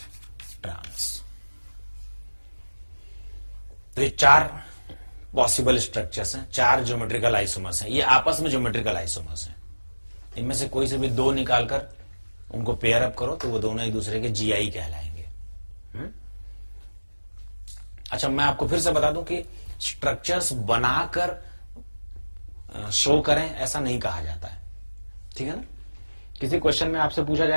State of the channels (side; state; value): both; inverted; correlation -1.00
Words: ट्रांस। तो ये 4 पॉसिबल स्ट्रक्चर्स हैं, 4 ज्योमेट्रिकल आइसोमर्स हैं, ये आपस में ज्योमेट्रिकल आइसोमर्स हैं। इनमें से कोई से भी 2 निकालकर उनको पेयर अप करो तो वो दोनों एक दूसरे के जीआई कहलाएंगे। अच्छा, मैं आपको फिर से बता दूं कि स्ट्रक्चर्स बनाकर शो करें ऐसा नहीं कहा जाता है, ठीक है ना। किसी क्वेश्चन में आपसे पूछा